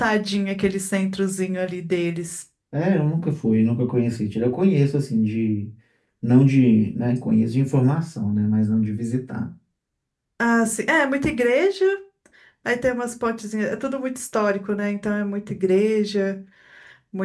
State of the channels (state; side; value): identical; both; correlation 1.00